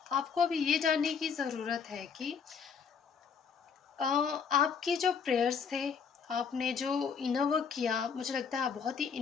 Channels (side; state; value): right; quieter; 6.3 dB